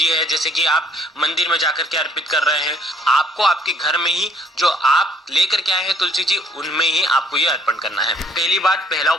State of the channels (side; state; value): both; normal; correlation 0.61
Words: है, जैसे कि आप मंदिर में जाकर के अर्पित कर रहे हैं। आपको आपके घर में ही जो आप लेकर के आए हैं तुलसी जी, उनमें ही आपको ये अर्पण करना है। पहली बात, पहला